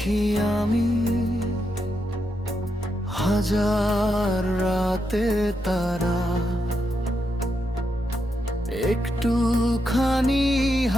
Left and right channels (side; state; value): both; normal; correlation 0.83